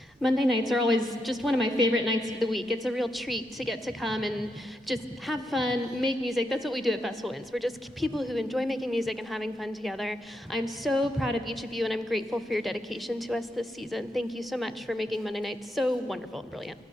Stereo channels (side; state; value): both; normal; correlation 0.82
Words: Monday nights are always just one of my favorite nights of the week. It's a real treat to get to come and just have fun, make music. That's what we do at Festival Winds. We're just people who enjoy making music and having fun together. I'm so proud of each of you, and I'm grateful for your dedication to us this season. Thank you so much for making Monday nights so wonderful and brilliant.